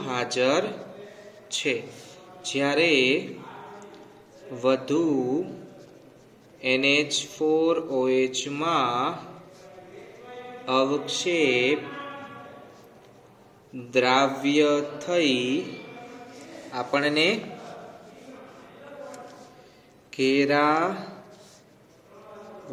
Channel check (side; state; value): both; identical; correlation 1.00